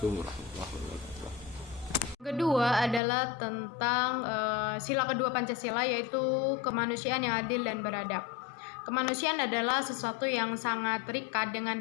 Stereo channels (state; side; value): drops out; right; at 3.0 s